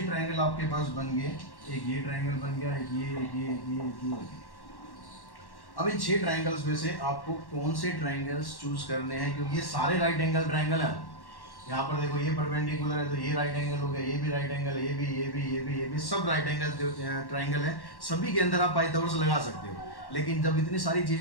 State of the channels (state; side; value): late; right; 1.1 ms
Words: ट्राइंगल आपके पास बन गए, एक ये ट्राइंगल बन गया, एक ये, एक ये, एक ये, एक ये। अब इन 6 ट्राइंगल्स में से आपको कौन से ट्राइंगल्स चूज करने हैं, क्योंकि ये सारे राइट एंगल ट्राइंगल है। यहाँ पर देखो ये परपेंडिकुलर है तो ये राइट एंगल हो गया, ये भी राइट एंगल, ये भी, ये भी, ये भी, ये भी, सब राइट एंगल ट्राइंगल है। सभी के अंदर आप पाइथागोरस लगा सकते हो। लेकिन जब इतनी सारी